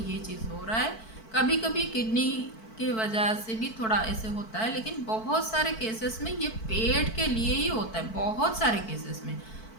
चीज़ हो रहा है। कभी कभी किडनी के वजह से भी थोड़ा ऐसे होता है, लेकिन बहुत सारे केसेस में ये पेट के लिए ही होता है। बहुत सारे केसेस में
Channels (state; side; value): late; right; 4.5 ms